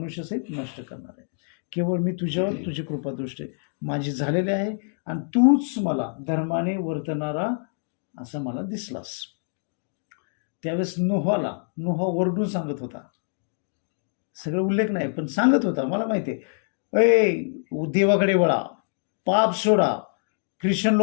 नष्ट करणार आहे. केवळ मी तुझ्यावर तुझी कृपादृष्टी माझी झालेली आहे आणि तूच मला धर्माने वर्तणारा असं मला दिसलास. त्यावेळेस नोहा ओरडून सांगत होता, सगळं उल्लेख नाही पण सांगत होता, मला माहिती आहे, देवाकडे वळा, पाप सोडा, ख्रिश्चन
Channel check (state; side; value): silent; right; digital silence